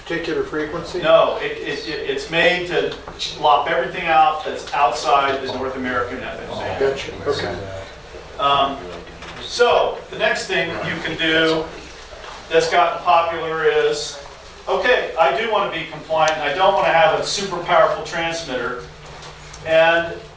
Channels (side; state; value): both; identical; correlation 1.00